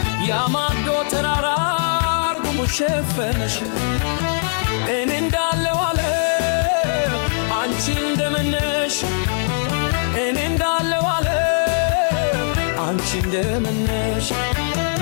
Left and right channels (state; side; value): silent; right; digital silence